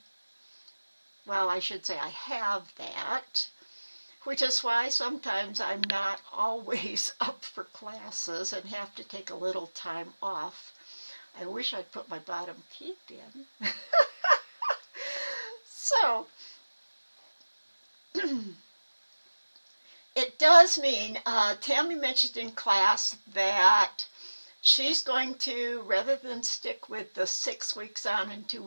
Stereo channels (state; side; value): inverted; both; correlation -1.00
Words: Well, I should say I have that, which is why sometimes I'm not always up for classes and have to take a little time off. I wish I'd put my bottom teeth in. So, it does mean, Tammy mentioned in class that she's going to, rather than stick with the 6 weeks on and 2